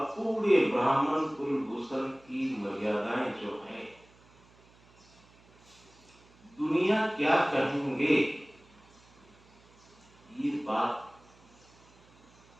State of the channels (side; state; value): right; noise; hum, 28 dB below the sound